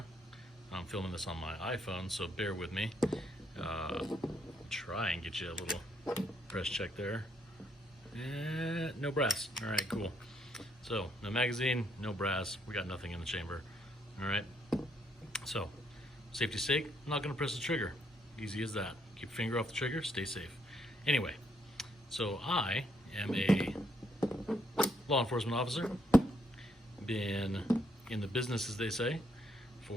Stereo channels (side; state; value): both; normal; correlation 0.73